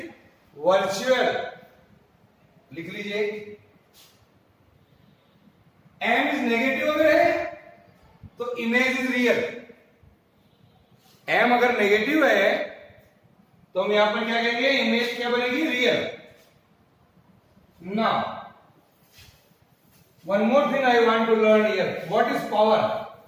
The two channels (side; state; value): both; identical; correlation 1.00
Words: virtual. लिख लीजिए. m is negative अगर है तो image is real. m अगर negative है तो हम यहां पर क्या कहेंगे, इमेज क्या बनेगी, real. Now one more thing I want to learn here. What is power?